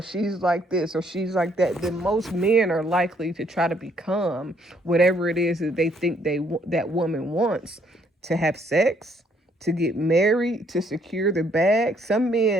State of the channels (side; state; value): both; normal; correlation 0.67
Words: like this or she's like that, then most men are likely to try to become whatever it is that they think that woman wants: to have sex, to get married, to secure the bag. Some